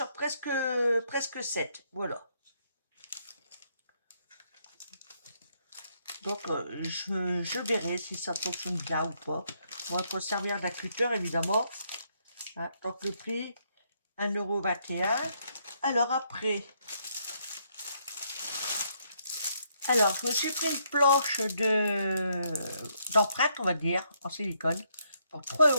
presque 7, voilà. Donc, je verrai si ça fonctionne bien ou pas. On va s'en servir d'un cutter, évidemment. Hein, donc, le prix, 1,21 €. Alors, après, je me suis pris une planche d'empreinte, on va dire, en silicone, pour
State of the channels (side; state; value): both; inverted; correlation -0.73